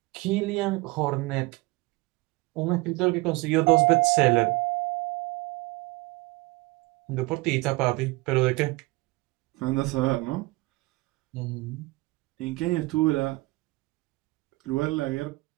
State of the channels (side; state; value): left; quieter; 22.6 dB